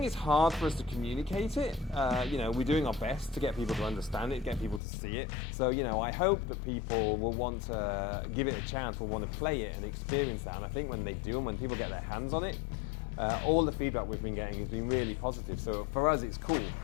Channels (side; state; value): right; drops out; at 4.8 s